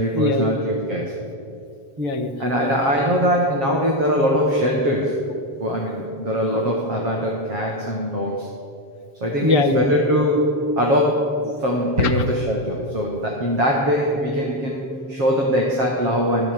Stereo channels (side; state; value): left; late; 7.4 ms